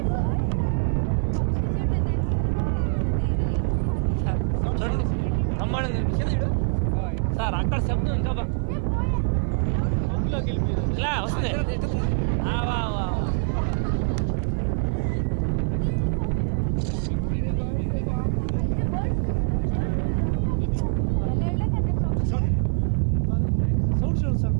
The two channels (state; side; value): silent; left; 62 dB below the other